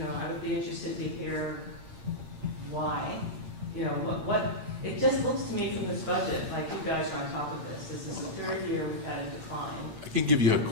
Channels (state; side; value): late; left; 8.8 ms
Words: would be interested to hear why. What, it just looks to me from this budget like you guys are on top of this. This is the 3rd year we've had a decline. I can give you a